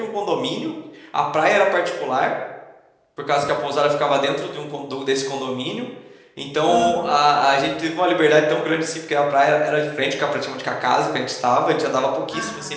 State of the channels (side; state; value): both; identical; correlation 1.00